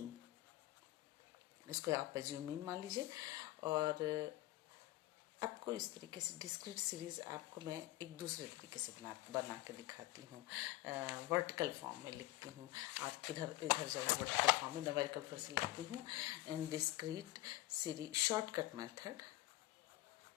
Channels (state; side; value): quieter; right; 17.2 dB